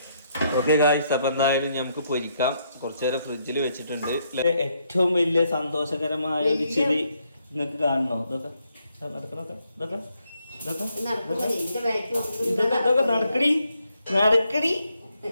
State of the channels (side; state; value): both; inverted; correlation -0.75